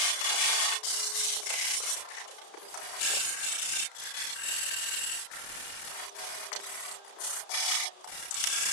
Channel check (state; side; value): late; right; 33 ms